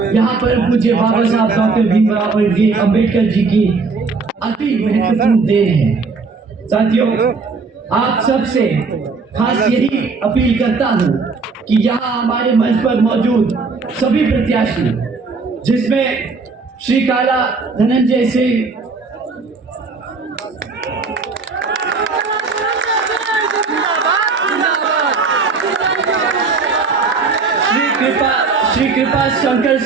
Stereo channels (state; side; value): quieter; left; 4.4 dB